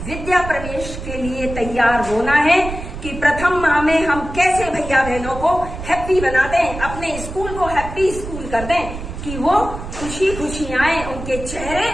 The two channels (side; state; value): right; noise; rumble, 9 dB below the sound